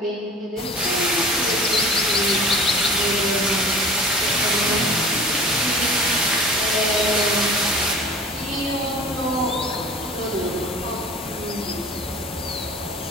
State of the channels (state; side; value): normal; both; correlation 0.42